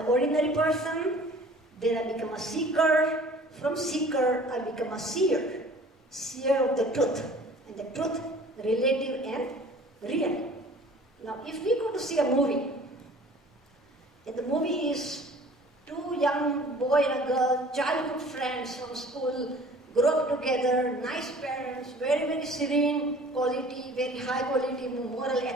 ordinary person, then I become a seeker. From seeker, I become a seer. Seer of the truth. And the truth, relative and real. Now, if we go to see a movie, and the movie is 2 young boy and a girl, childhood friends from school, grow up together, nice parents, very, very serene quality, very high quality, moral,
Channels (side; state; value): both; normal; correlation 0.49